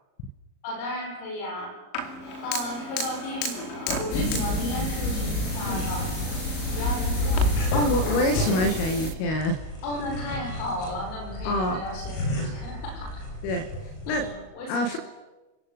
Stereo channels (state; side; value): late; right; 38 ms